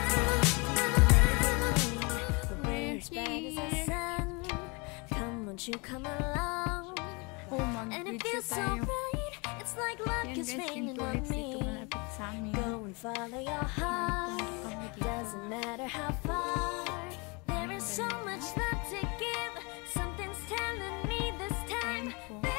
The way is bright as the sun. Come, won't you come along? And it feels so right. It's like luck is raining on me. Go and follow your heart. Doesn't matter how far. There is so much love to give. Something's telling me this time.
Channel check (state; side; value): quieter; right; 29.7 dB